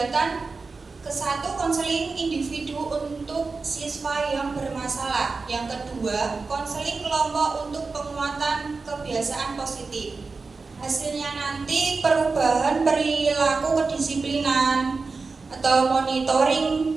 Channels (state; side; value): quieter; left; 4.2 dB